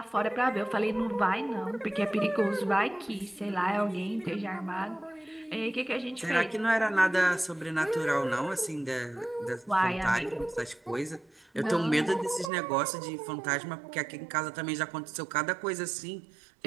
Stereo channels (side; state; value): left; drops out; at 12.5 s